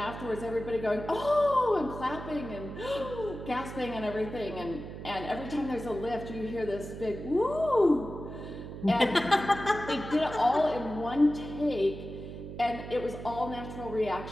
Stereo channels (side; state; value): right; noise; hum, 10 dB below the sound